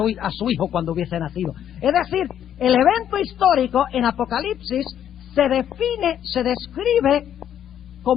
su hijo cuando hubiese nacido. Es decir, el evento histórico en Apocalipsis se define, se describe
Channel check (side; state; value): right; quieter; 10.0 dB